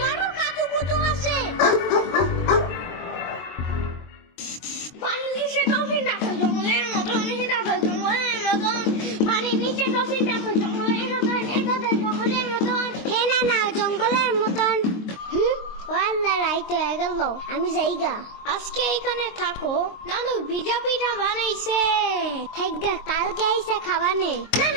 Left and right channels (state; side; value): late; right; 23 ms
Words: কাতুকুতু আছে। পানির নিচে ডলফিন ডাকো জঙ্গলের মতো। পানির নিচে ডলফিন ডাকো জঙ্গলের মতন। জঙ্গলের মতন। হে না না জঙ্গলের মতন। ও আল্লাহ রাইত হয়ে গেল আমি যাইগা। আজকে এখানে থাকো। নানু ভিজা পিঠা বানাইছে। থাকগা কালকে আইসা খাবানে। না